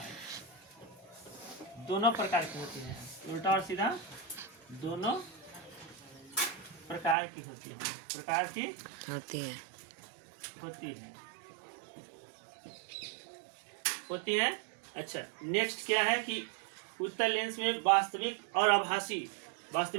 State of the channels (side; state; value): left; drops out; at 7.2 s